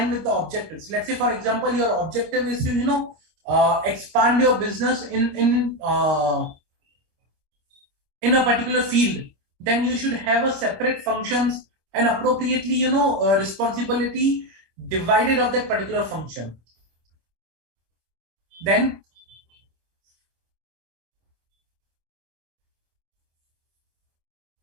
with the objectives. Let's say, for example, your objective is to expand your business in a particular field. Then you should have a separate functions and appropriately responsibility divided of that particular function. Then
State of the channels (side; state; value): left; late; 26 ms